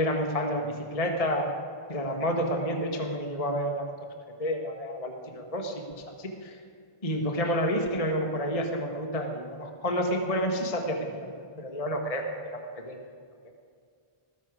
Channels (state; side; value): late; right; 1.6 ms